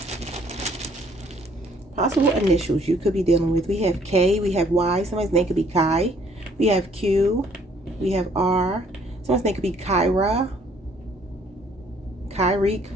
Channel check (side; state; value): both; normal; correlation 0.62